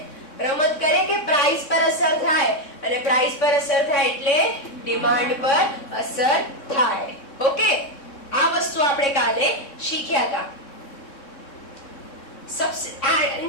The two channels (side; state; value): right; late; 3.6 ms